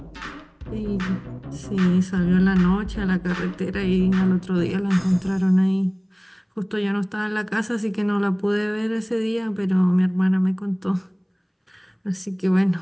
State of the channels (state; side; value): identical; both; correlation 1.00